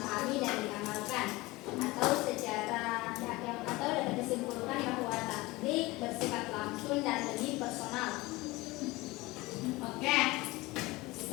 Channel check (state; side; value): quieter; right; 21.3 dB